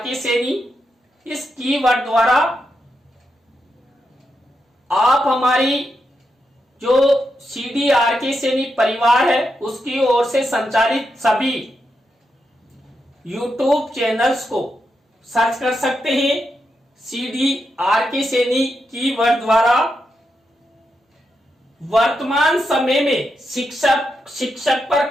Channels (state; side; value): normal; both; correlation 0.85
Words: सैनी। इस कीवर्ड द्वारा आप हमारी जो CDRK सैनी परिवार है उसकी ओर से संचालित सभी YouTube चैनल्स को सर्च कर सकते हैं। CDRK सैनी कीवर्ड द्वारा वर्तमान समय में शिक्षक पर